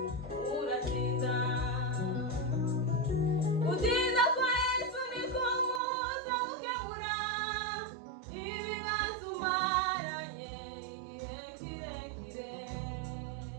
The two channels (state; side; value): drops out; left; at 5.8 s